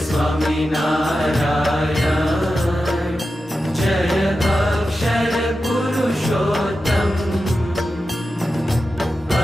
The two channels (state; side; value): normal; both; correlation 0.91